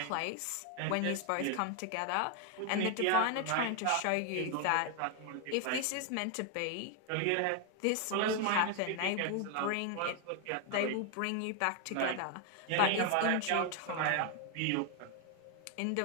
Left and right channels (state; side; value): different; both; correlation 0.01